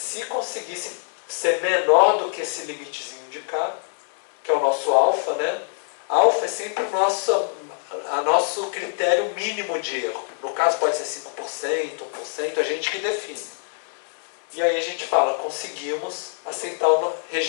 conseguisse ser menor do que esse limitezinho de K, que é o nosso alfa, né? Alfa é sempre o nosso critério mínimo de erro. No caso pode ser 5%, 1%, a gente que define. E aí a gente fala, conseguimos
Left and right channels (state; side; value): silent; right; 62 dB below the other